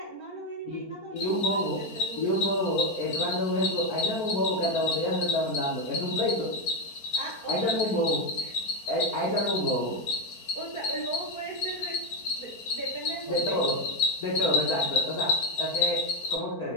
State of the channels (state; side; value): late; right; 4.4 ms